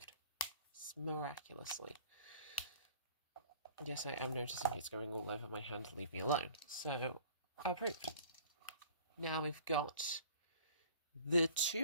Miraculously. Yes, I am noticing it's going all over my hand. Leave me alone. So, approved. Now we've got the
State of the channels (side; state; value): both; inverted; correlation -0.48